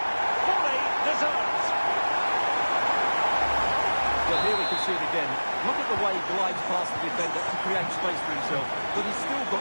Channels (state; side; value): inverted; both; correlation -1.00